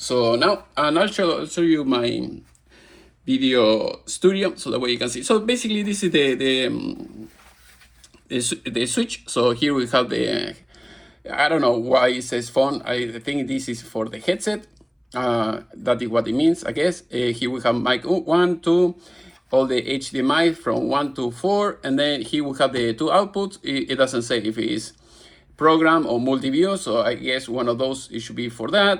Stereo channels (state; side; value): identical; both; correlation 1.00